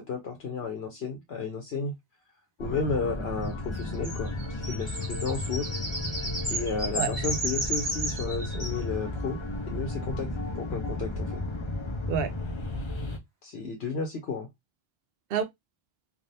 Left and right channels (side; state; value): both; normal; correlation 0.18